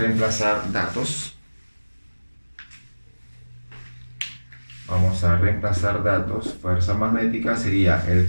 datos. Vamos a reemplazar datos. Fuerza magnética sería el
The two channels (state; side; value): inverted; both; correlation -1.00